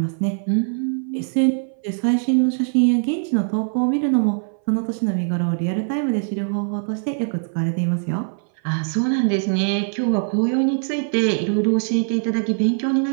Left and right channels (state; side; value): silent; left; 59 dB below the other